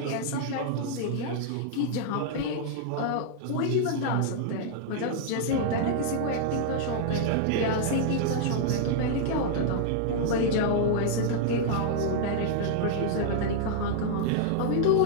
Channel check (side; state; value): both; different; correlation -0.01